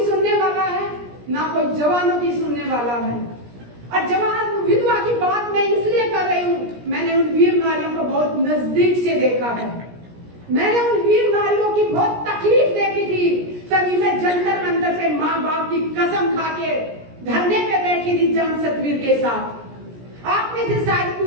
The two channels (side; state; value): left; late; 17 ms